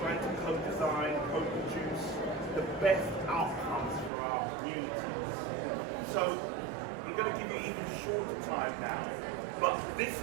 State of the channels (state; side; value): drops out; left; at 4.1 s